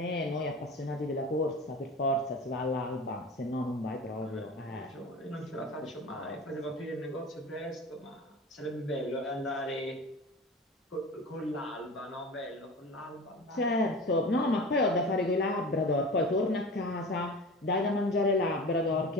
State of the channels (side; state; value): both; normal; correlation 0.34